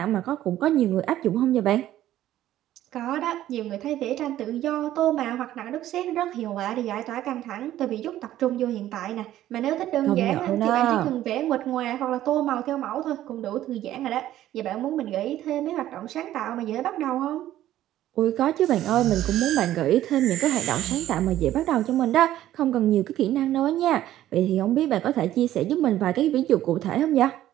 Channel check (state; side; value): quieter; left; 13.2 dB